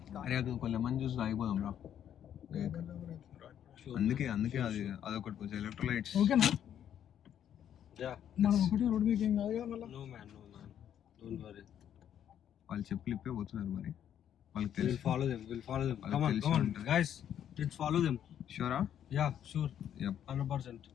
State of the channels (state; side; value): quieter; right; 9.8 dB